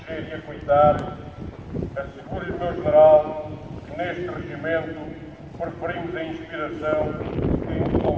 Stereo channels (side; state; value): both; identical; correlation 1.00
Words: e acoitar. Asseguro-lhe, meu general, que neste regimento preferimos a inspiração que o